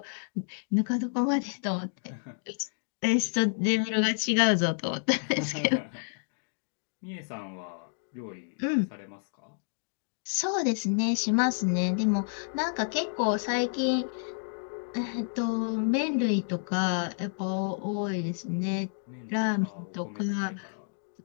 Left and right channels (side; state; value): right; silent; digital silence